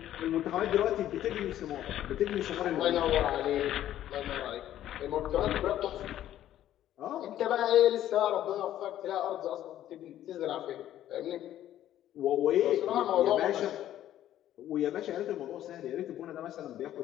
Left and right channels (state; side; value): quieter; right; 12.3 dB